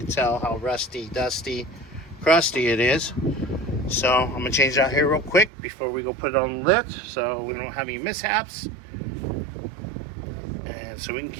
tell how rusty, dusty, crusty it is. So I'm gonna change it out here real quick before we go put it on the lift, so we don't have any mishaps, and so we can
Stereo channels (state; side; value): drops out; left; at 5.5 s